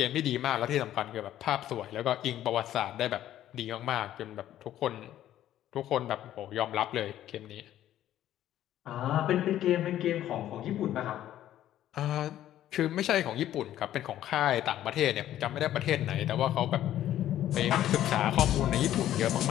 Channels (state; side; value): quieter; right; 12.4 dB